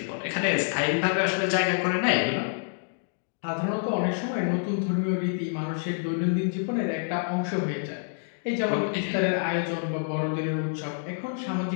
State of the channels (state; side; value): silent; right; digital silence